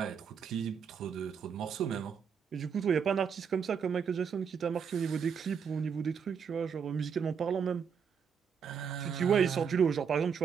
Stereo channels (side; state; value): left; quieter; 6.8 dB